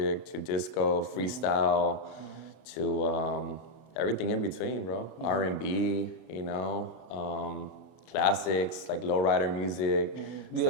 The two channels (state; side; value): late; right; 32 ms